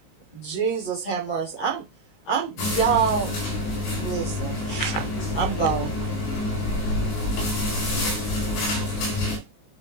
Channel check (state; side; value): late; right; 19 ms